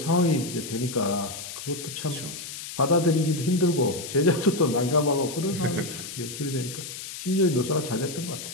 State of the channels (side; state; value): left; noise; hiss, 10 dB below the sound